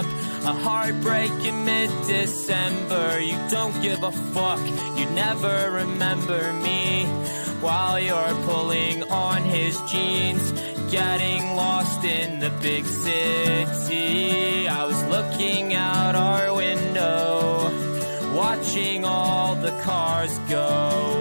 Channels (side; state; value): both; inverted; correlation -1.00